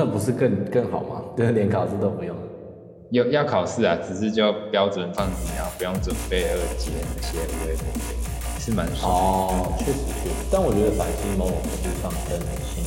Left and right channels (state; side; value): identical; both; correlation 1.00